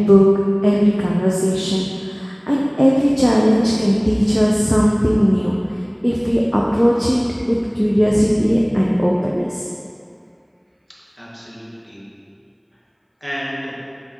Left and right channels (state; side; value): identical; both; correlation 1.00